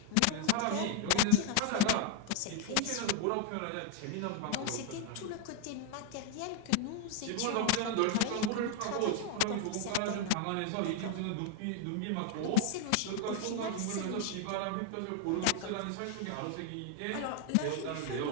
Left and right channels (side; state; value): both; different; correlation 0.00